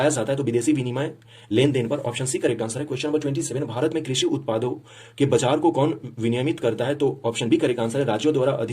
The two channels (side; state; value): both; identical; correlation 1.00